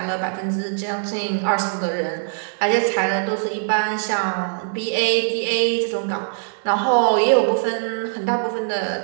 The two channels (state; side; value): silent; left; digital silence